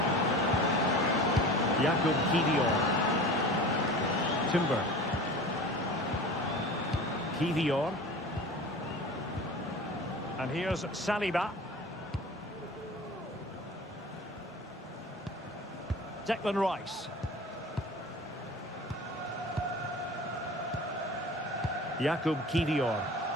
Jakub Kivior. Timber. Kivior. And here's Saliba. Declan Rice. Jakub Kivior.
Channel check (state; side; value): normal; both; correlation 0.37